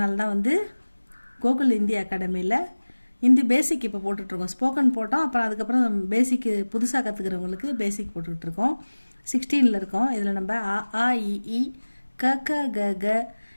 தான் கோகுல் ஹிந்தி அகாடமியில் ஹிந்தி பேசிக் இப்போ போட்டுட்ருக்கோம். ஸ்போக்கன் போட்டோம், அப்புறம் அதுக்கப்புறம் பேசிக்கு புதுசாக கற்றுக்கிறவங்களுக்கு பேசிக் போட்டுட்ருக்கோம். 16 இருக்கோம். இதில் நம்ம ஆ இ ஈ க க க க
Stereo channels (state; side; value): inverted; both; correlation -1.00